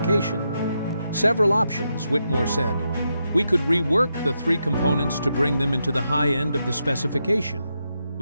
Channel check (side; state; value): both; inverted; correlation -0.84